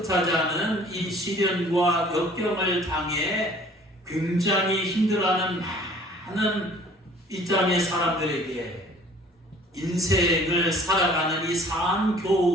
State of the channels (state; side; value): normal; both; correlation 0.52